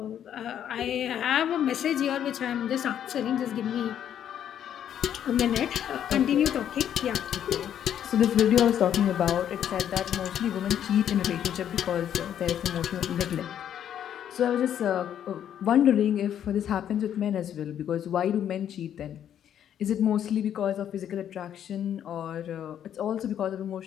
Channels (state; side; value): quieter; right; 9.8 dB